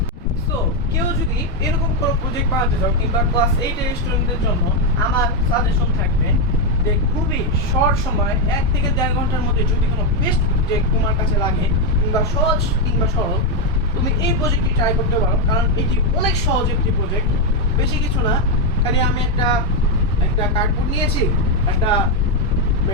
সো কেউ যদি এরকম কোনো প্রজেক্ট বানাতে চাও, কিংবা ক্লাস 8-এর স্টুডেন্টদের জন্য আমার সাজেশন থাকবে যে খুবই শর্ট সময় 1 থেকে 1.5 ঘন্টার মধ্যে যদি কোনো বেস্ট প্রজেক্ট তোমার কাছে লাগে, কিংবা সহজ কিংবা সরল, তুমি এই প্রজেক্টটি ট্রাই করতে পারো। কারণ এটি অনেক সহজ একটি প্রজেক্ট, বেশি কিছু না। খালি আমি একটা কার্ডবোর্ড নিয়েছি, একটা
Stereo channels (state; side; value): normal; both; correlation 0.04